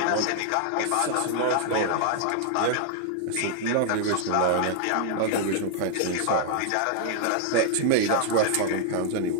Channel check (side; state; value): both; different; correlation 0.00